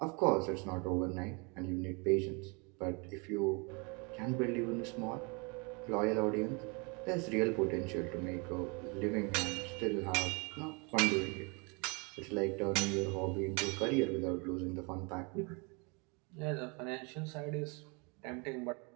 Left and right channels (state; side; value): quieter; left; 31.5 dB